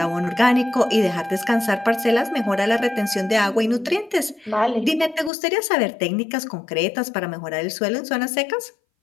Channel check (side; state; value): right; drops out; at 5.3 s